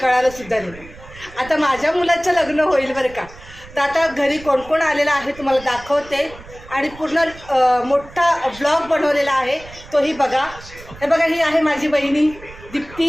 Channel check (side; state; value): right; noise; rumble, 19 dB below the sound